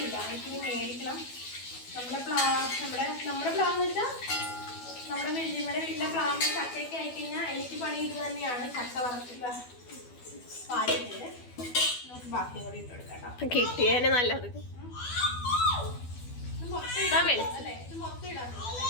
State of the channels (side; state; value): right; late; 12 ms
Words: എനിക്കിനി മേടിക്കണം. നമ്മുടെ പ്ലാന്ന് വെച്ചാൽ നമ്മുടെ വെല്ലിമ്മയുടെ വീട്ടിലെ പ്ലാവിന് ചക്കയ്ക്ക് ആയിക്കഴിഞ്ഞാൽ എനിക്ക് പണി ഇത് തന്നെയാണ്. ചക്ക വറുത്തില്ല പാലിട്ട് നമുക്ക് ബാക്കി കൂടി ഇട്ട് കൊടുക്കാം. കിട്ടിയേനെ നല്ലത്. ഇത് മൊത്തം ഇടാം അല്ലേ? ഇത് മൊത്തം ഇടാൻ